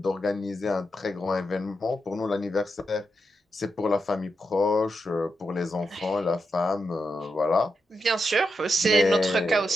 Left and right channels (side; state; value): both; normal; correlation 0.86